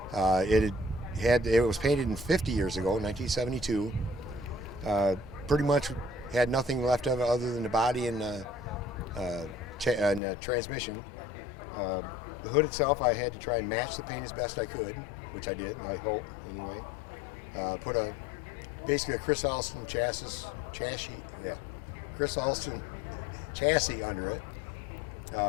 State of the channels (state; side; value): drops out; right; at 10.2 s